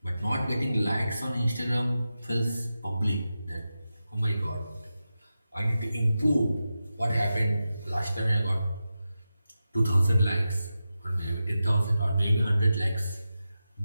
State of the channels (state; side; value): inverted; both; correlation -0.92